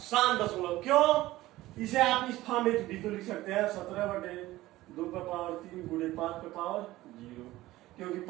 दशमलव। क्यों? इसे आप इस फॉर्म में भी तो लिख सकते हैं 17/2 पे पावर 3 गुणे 5 पे पावर 0, क्योंकि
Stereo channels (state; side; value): quieter; left; 17.0 dB